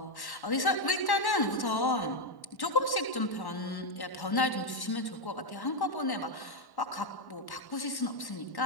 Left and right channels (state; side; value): late; right; 1.1 ms